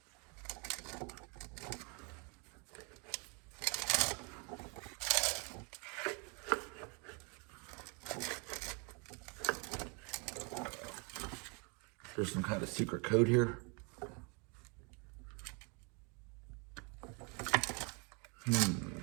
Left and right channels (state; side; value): quieter; left; 33.5 dB